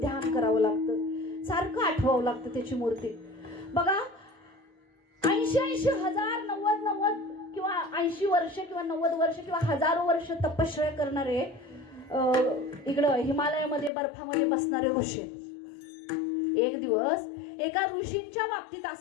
करावं लागतं, सारखं आठवावं लागतं त्याची मूर्ती. बघा 80 हजार 90 किंवा 80 वर्ष किंवा 90 वर्ष किंवा हजारो वर्ष तपश्चर्या करणारे इकडं हिमालयामध्ये बर्फामध्ये बसणारे ऋषी. एक दिवस एका ऋषींच्या बाबतीत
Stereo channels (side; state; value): right; drops out; at 13.9 s